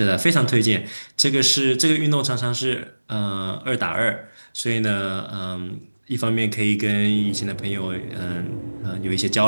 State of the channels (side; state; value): both; inverted; correlation -1.00